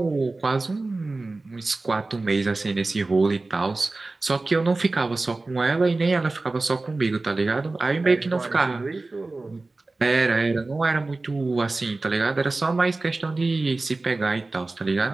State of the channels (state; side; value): quieter; left; 3.3 dB